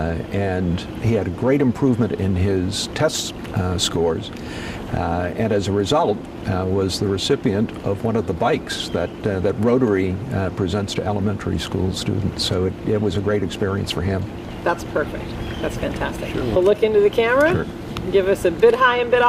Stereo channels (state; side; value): identical; both; correlation 1.00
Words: And he had a great improvement in his test scores. And as a result, was the recipient of one of the bikes that Rotary presents to elementary school students. So it was a great experience for him. That's perfect. That's fantastic. Sure. We'll look into the camera, Sure. Give us a bid high and bid